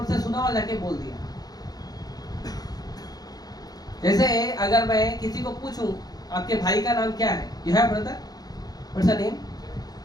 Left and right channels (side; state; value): right; late; 0.19 ms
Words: से सुना और जाके बोल दिया। जैसे अगर मैं किसी को पूछूं आपके भाई का नाम क्या है, you have brother, what's the name?